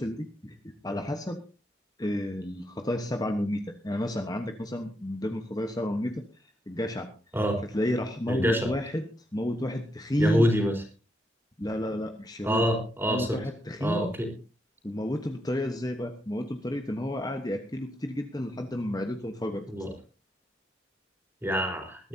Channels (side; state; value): both; normal; correlation 0.80